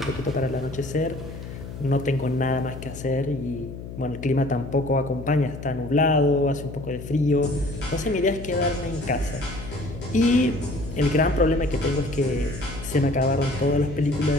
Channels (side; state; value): left; noise; hum, 11 dB below the sound